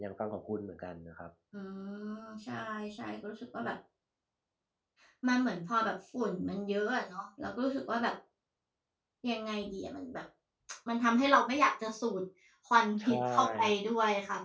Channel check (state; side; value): identical; both; correlation 1.00